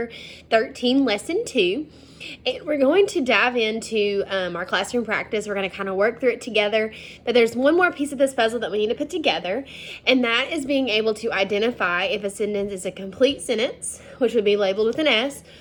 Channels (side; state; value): both; identical; correlation 1.00